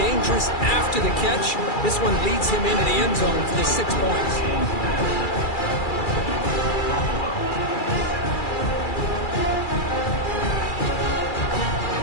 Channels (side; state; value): right; late; 2.3 ms